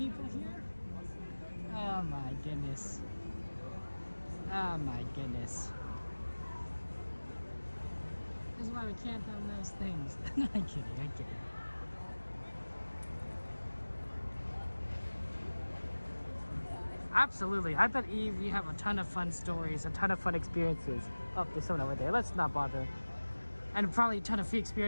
here. Oh my goodness. Oh my goodness. This is why we can't have nice things. No, I'm kidding, I'm kidding. Absolutely. I bet, Eve, you have a ton of fun stories, a ton of fun experiences. Oh, there's someone over there. Let's not bother. And probably a ton of free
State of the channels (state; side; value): inverted; both; correlation -1.00